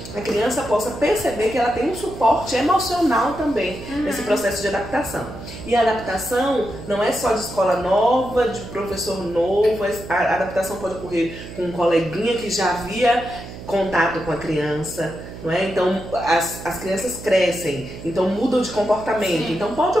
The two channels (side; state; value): right; noise; hum, 13 dB below the sound